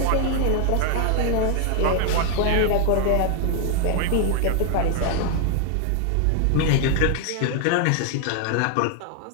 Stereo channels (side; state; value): both; different; correlation 0.00